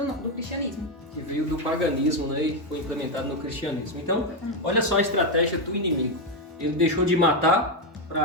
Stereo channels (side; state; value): both; normal; correlation 0.06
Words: cristianismo. Que veio do paganismo, né, e foi implementado no cristianismo. Então, olha só a estratégia do inimigo. Ele deixou de matar para